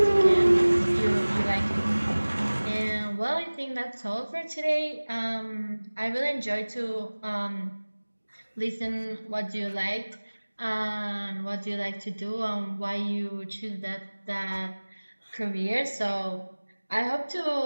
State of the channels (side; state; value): both; inverted; correlation -1.00